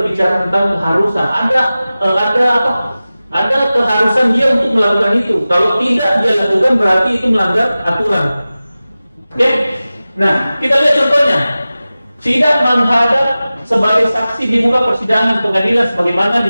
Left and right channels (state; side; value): inverted; both; correlation -0.96